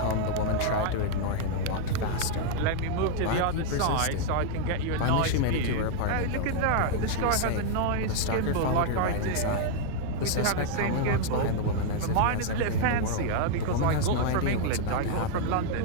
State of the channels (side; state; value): both; different; correlation 0.00